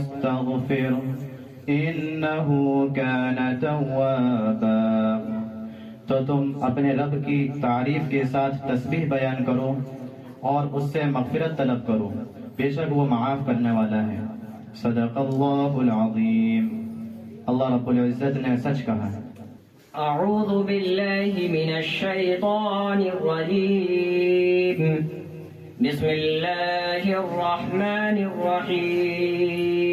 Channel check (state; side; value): identical; both; correlation 1.00